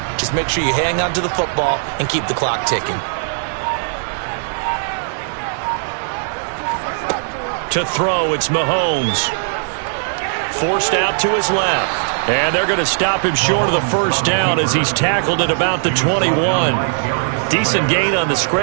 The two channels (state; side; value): silent; left; digital silence